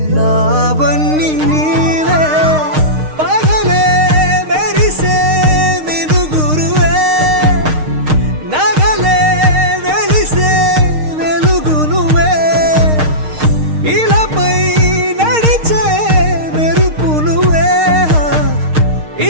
నావన్నీ నీవే పగలే మెరిసే మినుగురువే నగలే వెలిసే వెలుగు నువ్వే ఇలాపై నడిచే మెరుపు నువ్వే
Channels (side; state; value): left; late; 6.5 ms